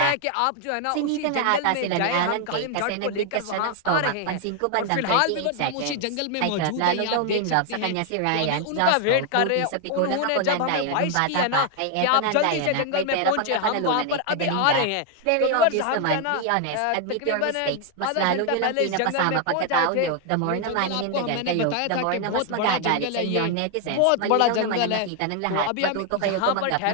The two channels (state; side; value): different; both; correlation 0.00